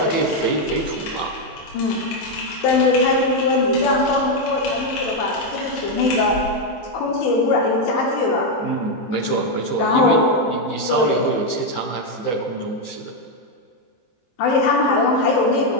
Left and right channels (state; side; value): late; right; 16 ms